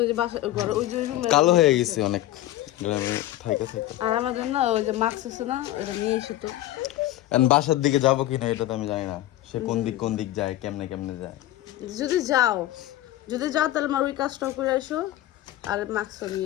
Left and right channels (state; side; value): quieter; right; 14.8 dB